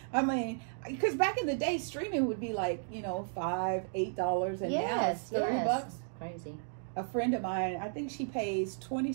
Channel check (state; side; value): silent; left; digital silence